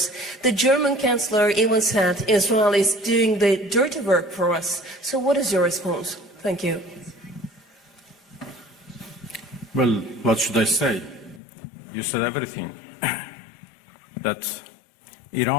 The German Chancellor even said Israel is doing the dirty work for us. So what is your response? Thank you. Well, what should I say? You said everything. That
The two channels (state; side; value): drops out; right; at 11.4 s